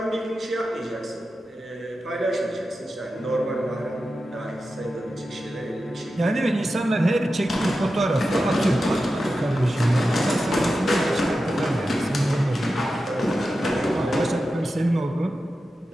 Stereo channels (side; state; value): both; normal; correlation 0.92